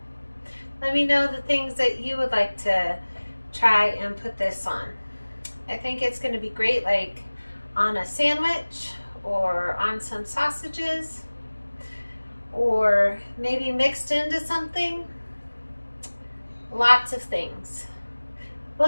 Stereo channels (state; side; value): inverted; both; correlation -1.00